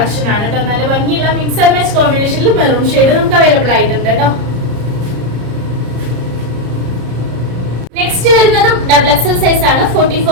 ആണ് കേട്ടോ. നല്ല ഭംഗിയുള്ള മിക്സ് ആൻഡ് മാച്ച് കോമ്പിനേഷനിൽ മെറൂൺ ഷെയ്ഡ് നമുക്ക് അവൈലബിൾ ആയിട്ടുണ്ട് കേട്ടോ. നെക്സ്റ്റ് വരുന്നതും ഡബിൾ XL സൈസ് ആണ്.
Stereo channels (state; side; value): late; left; 34 ms